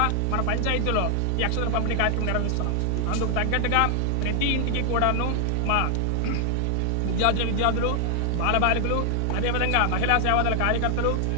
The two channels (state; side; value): different; both; correlation 0.00